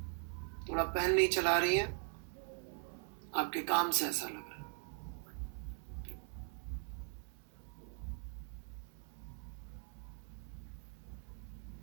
थोड़ा पेन नहीं चला रही है, आपके काम से ऐसा लग रहा है।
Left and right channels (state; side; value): silent; left; 51 dB below the other